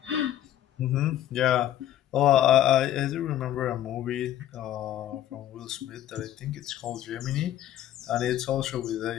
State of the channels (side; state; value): right; quieter; 12.1 dB